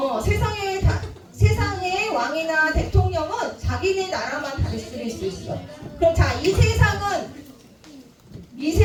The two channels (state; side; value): identical; both; correlation 1.00